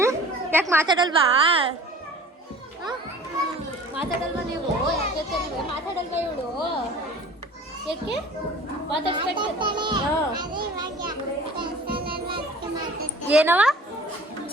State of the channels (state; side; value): normal; both; correlation 0.44